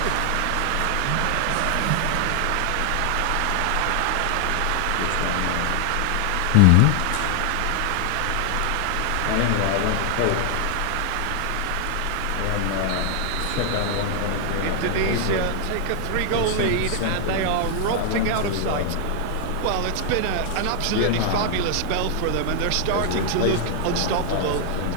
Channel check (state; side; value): different; both; correlation 0.00